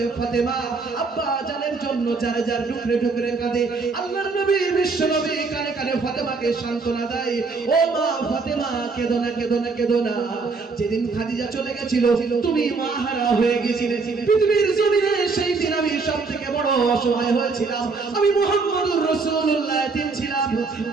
ফাতেমা আব্বা জানের জন্য যার যার টুকরে টুকরে কাঁদে। আল্লাহর নবী বিশ্ব নবী কানে কানে ফাতেমাকে সান্ত্বনা দেয়, ও মা ফাতেমা কেঁদো না, কেঁদো না, কেঁদো না। যেদিন খাদিজা চলে গেছিল তুমি মা হারা হয়ে গেছিলে পৃথিবীর জমিনে, সেই দিন আমি সবথেকে বড় অসহায় হয়েছিলাম। আমি মুহাম্মদুর রাসূলুল্লাহ এতিম ছিলাম,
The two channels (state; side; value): quieter; left; 4.3 dB